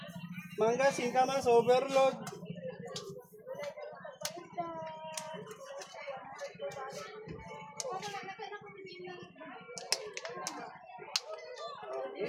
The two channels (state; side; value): identical; both; correlation 1.00